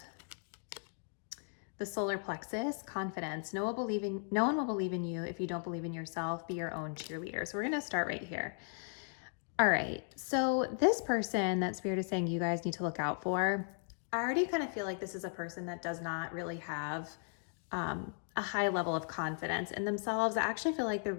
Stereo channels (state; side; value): silent; right; 53 dB below the other